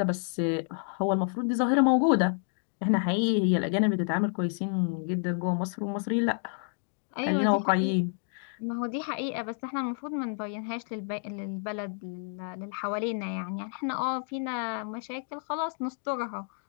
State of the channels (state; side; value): silent; right; 56 dB below the other